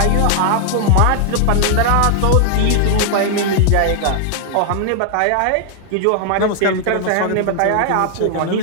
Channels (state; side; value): different; both; correlation 0.00